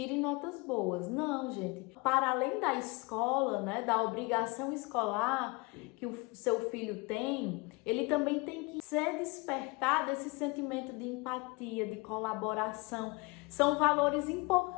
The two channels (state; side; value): quieter; right; 26.8 dB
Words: notas boas. Não, gente. Para além da escola, né, da obrigação escolar que o seu filho tem, ele também tem que ser despertado esse sentimento de empatia, de colaboração. São valores